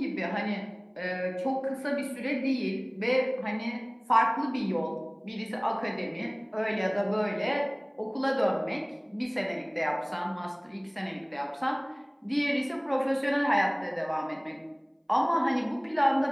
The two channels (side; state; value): both; identical; correlation 1.00